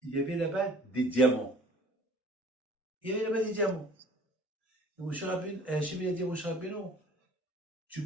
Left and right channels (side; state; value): both; normal; correlation 0.51